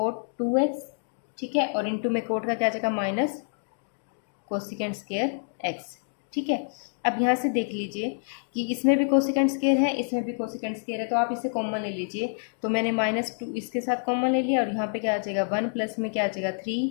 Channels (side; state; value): right; silent; digital silence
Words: टू एक्स। ठीक है, और इंटू में कोट का क्या आ जाएगा, माइनस कोसिकेंट स्क्वायर एक्स। ठीक है, अब यहाँ से देख लीजिए कि इसमें भी कोसिकेंट स्क्वायर है, इसमें भी कोसिकेंट स्क्वायर है, तो आप इसे कॉमन ले लीजिए। तो मैंने माइनस टू इसके साथ कॉमन ले लिया, और यहाँ पे क्या आ जाएगा, वन प्लस में क्या आ जाएगा, थ्री